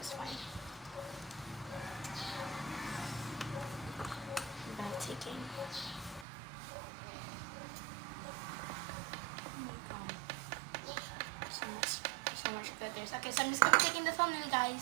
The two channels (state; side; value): drops out; left; at 6.2 s